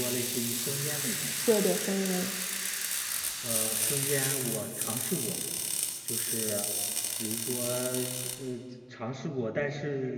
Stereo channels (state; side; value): identical; both; correlation 1.00